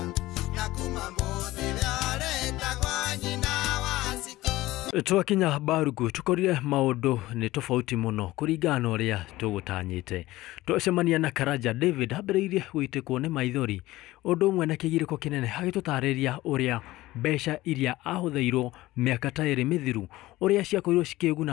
Twakinya Barugu tukorire maundu ni tofauti muno kuringana uria tugutanyite. Twacemania na Karanja David ambĩrĩirie gwitikwo ni maithori undu umwe na kigiriko kinene agitutariria uria mbeca iria ahuthairwo miaka ta iri mithiru uria ciakoirwo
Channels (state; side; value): quieter; right; 17.6 dB